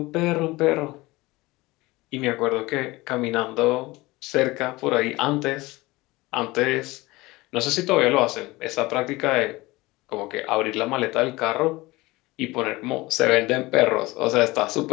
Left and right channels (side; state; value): right; quieter; 21.0 dB